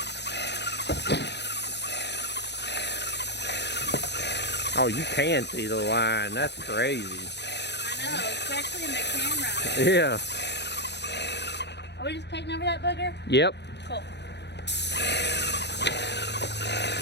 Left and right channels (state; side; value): late; right; 0.50 ms